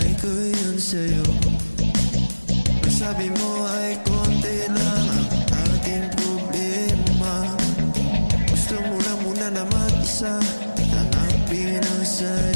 ko yun sa'yo. Ang sabi mo ay konti lang ang ating problema. Gusto mo lang muna na mag-isa, hanapin ang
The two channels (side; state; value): both; inverted; correlation -1.00